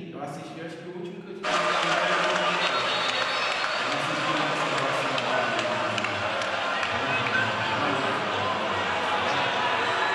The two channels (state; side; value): identical; both; correlation 1.00